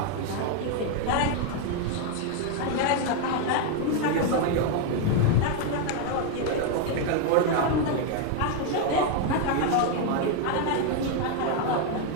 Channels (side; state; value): both; different; correlation 0.01